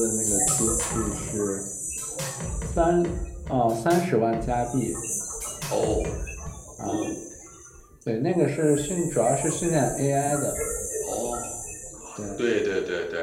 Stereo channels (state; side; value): identical; both; correlation 1.00